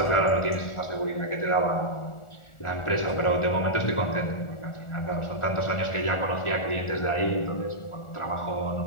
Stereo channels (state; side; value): late; right; 1.4 ms